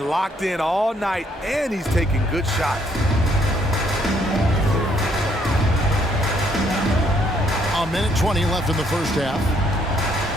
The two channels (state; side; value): normal; both; correlation 0.69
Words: locked in all night, and he's taking good shots. A minute 20 left in the first half.